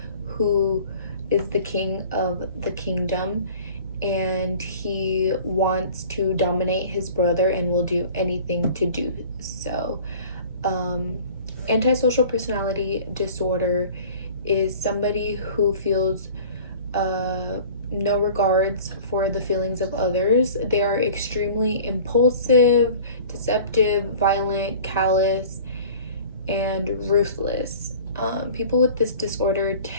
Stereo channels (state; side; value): inverted; both; correlation -0.44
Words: who is the king of the kingdom, and he wants to dominate his brother and will do anything to do so. Antisocial personality disorder is somebody who feels no regards for the feelings of others. They are extremely impulsive, deceptive, violent, callous, and ruthless. People with this disorder